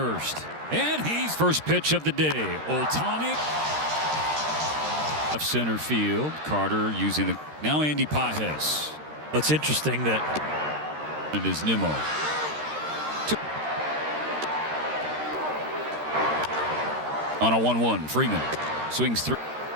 And he's first pitch of the day. Ohtani. Left center field. Carter using the. Now Andy Pages. What's interesting that. It is Nimmo. On a 1-1. Freeman swings through.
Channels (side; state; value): left; late; 13 ms